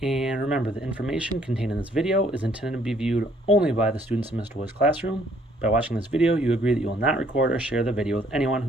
And remember, the information contained in this video is intended to be viewed only by the students in Mr. Woolley's classroom. By watching this video, you agree that you will not record or share the video with anyone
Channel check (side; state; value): both; normal; correlation 0.64